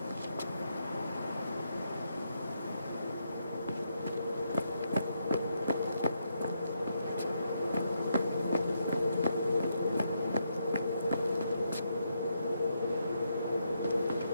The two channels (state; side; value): inverted; both; correlation -0.79